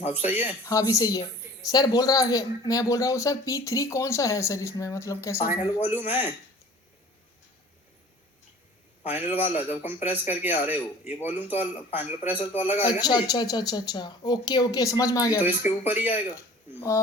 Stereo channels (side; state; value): both; normal; correlation 0.46